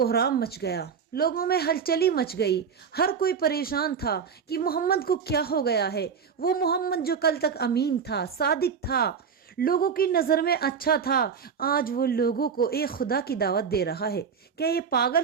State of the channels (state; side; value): quieter; left; 6.5 dB